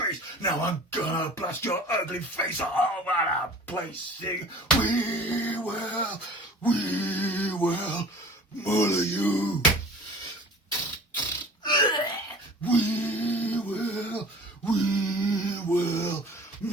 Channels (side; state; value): both; normal; correlation 0.44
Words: Now I'm gonna blast your ugly face all over the place. Sing, we will muller you. We will